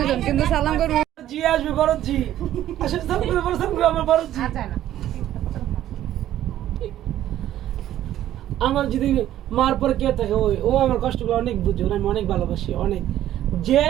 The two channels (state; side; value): quieter; left; 12.5 dB